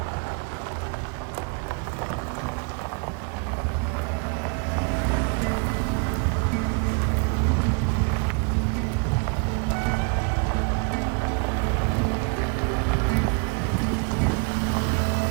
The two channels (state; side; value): quieter; left; 35.6 dB